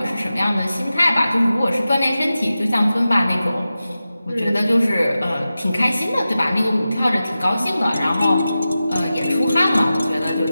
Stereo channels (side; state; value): both; inverted; correlation -0.93